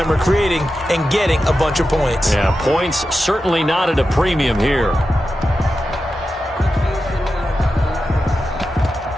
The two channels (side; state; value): both; normal; correlation 0.91